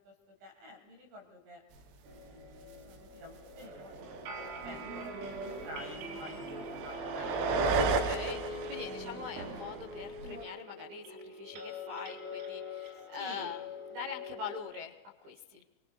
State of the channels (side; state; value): left; late; 21 ms